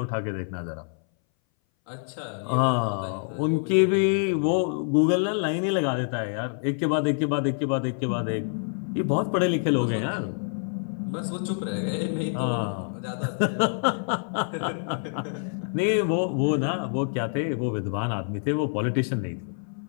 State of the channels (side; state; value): right; silent; 59 dB below the other